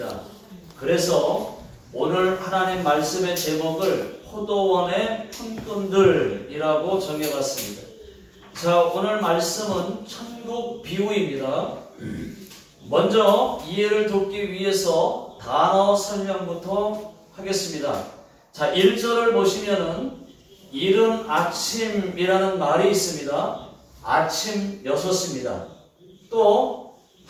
그래서 오늘 하나님 말씀의 제목을 포도원의 품꾼들이라고 정해봤습니다. 자, 오늘 말씀은 천국 비유입니다. 먼저 이해를 돕기 위해서 단어 설명부터 하겠습니다. 자, 1절을 보시면은 이른 아침이라는 말이 있습니다. 아침 6시입니다. 또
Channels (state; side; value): identical; both; correlation 1.00